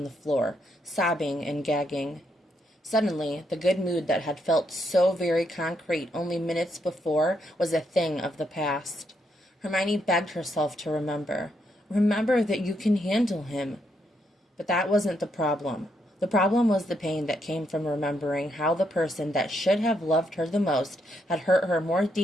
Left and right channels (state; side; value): normal; both; correlation 0.77